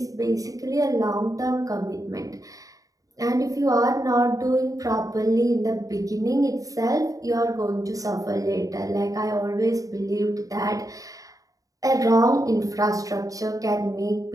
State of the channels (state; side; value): late; left; 0.17 ms